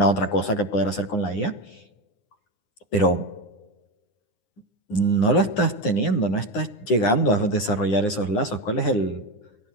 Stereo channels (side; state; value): right; late; 9.7 ms